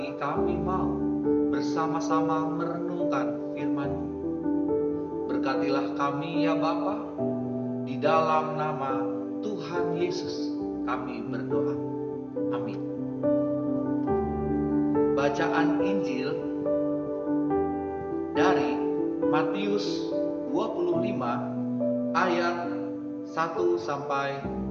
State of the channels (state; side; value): identical; both; correlation 1.00